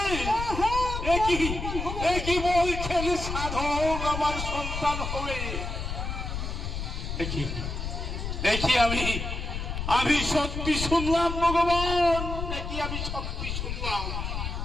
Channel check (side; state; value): left; noise; rumble, 4 dB below the sound